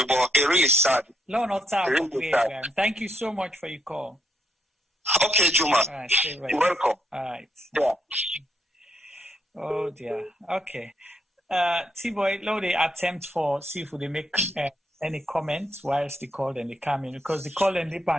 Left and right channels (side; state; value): both; normal; correlation 0.76